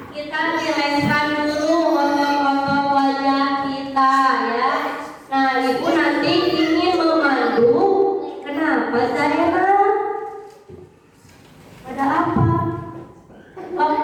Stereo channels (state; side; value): identical; both; correlation 1.00